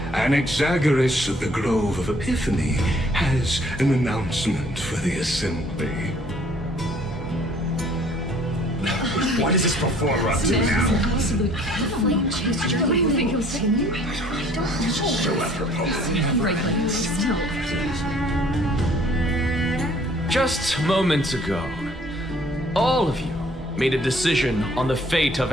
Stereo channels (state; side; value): normal; both; correlation 0.57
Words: Anaxagoras of the Grove of Epiphany has an announcement for the Assembly. What is this performer up to now? So apropos. Just moments ago, all of you made a decision on the fate of